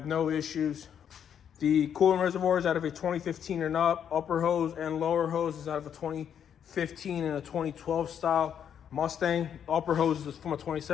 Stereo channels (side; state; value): right; quieter; 8.6 dB